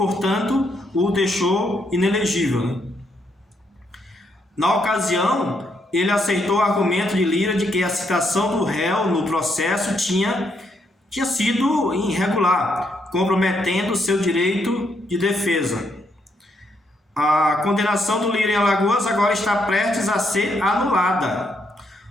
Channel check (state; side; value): normal; both; correlation 0.76